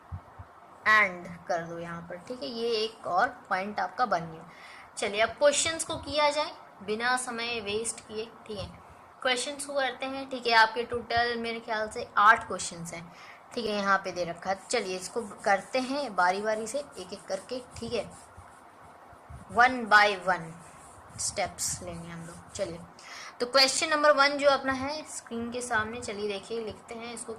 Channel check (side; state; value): both; identical; correlation 1.00